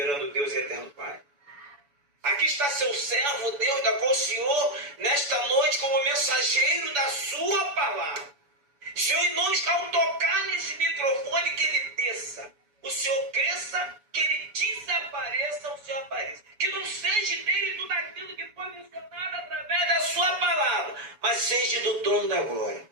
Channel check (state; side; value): late; left; 7.0 ms